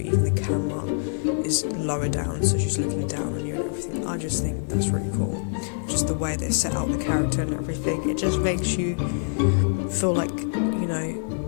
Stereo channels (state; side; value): silent; right; digital silence